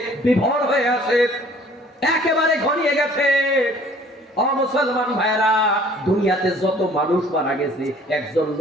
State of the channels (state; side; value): normal; both; correlation 0.54